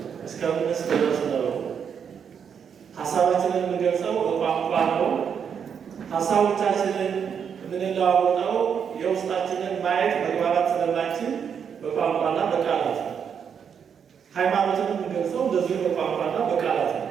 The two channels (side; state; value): left; quieter; 7.4 dB